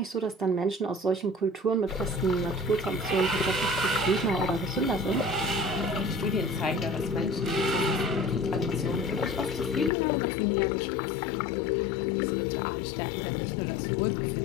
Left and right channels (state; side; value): drops out; right; at 9.9 s